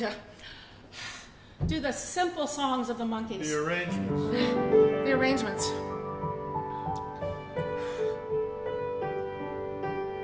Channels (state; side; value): identical; both; correlation 1.00